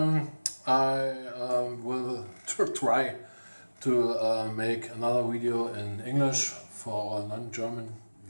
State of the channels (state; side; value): inverted; both; correlation -1.00